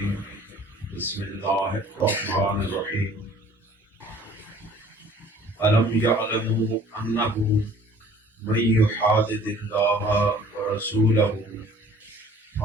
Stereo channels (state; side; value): normal; both; correlation 0.52